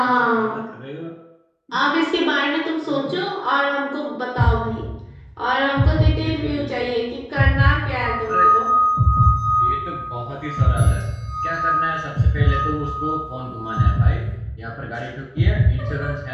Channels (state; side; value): identical; both; correlation 1.00